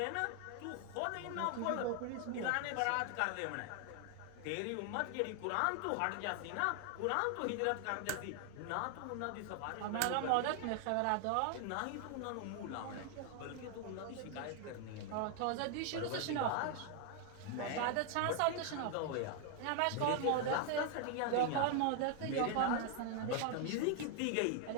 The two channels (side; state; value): both; different; correlation 0.00